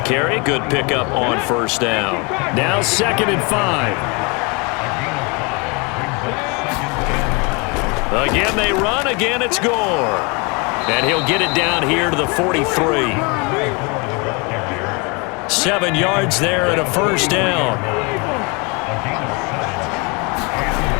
Good pickup on 1st down. Now 2nd and 5. Again they run. Again it's Gore. And he'll get it down here to the 43. 7 yards there and a 1st down.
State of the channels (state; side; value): quieter; right; 30.3 dB